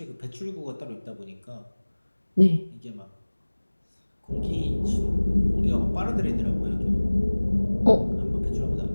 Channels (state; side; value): inverted; both; correlation -1.00